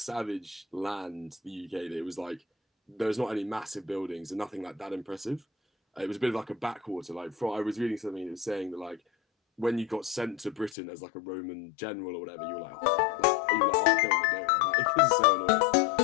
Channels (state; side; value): drops out; right; at 10.8 s